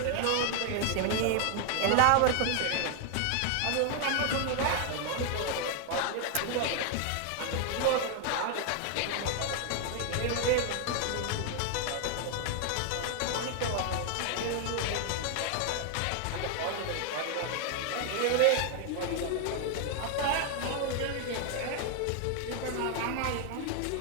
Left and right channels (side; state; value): both; different; correlation 0.00